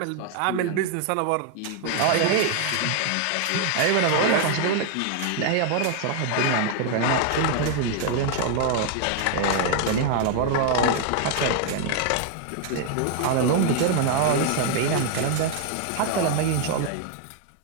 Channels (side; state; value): both; different; correlation 0.00